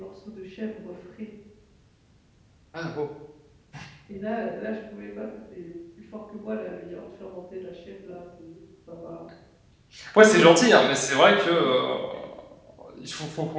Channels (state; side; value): identical; both; correlation 1.00